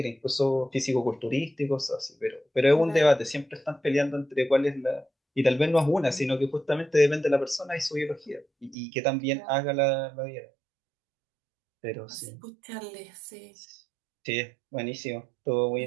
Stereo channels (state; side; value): drops out; left; at 8.8 s